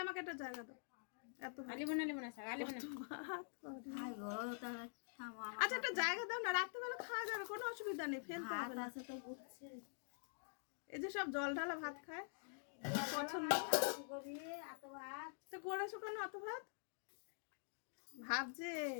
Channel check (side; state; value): right; silent; digital silence